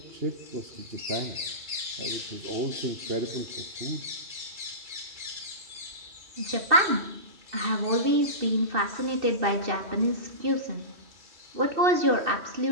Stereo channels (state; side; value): late; left; 2.6 ms